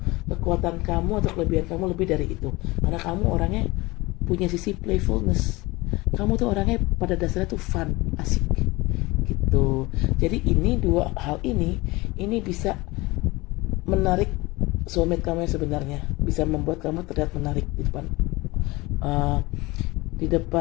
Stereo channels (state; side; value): quieter; right; 22.1 dB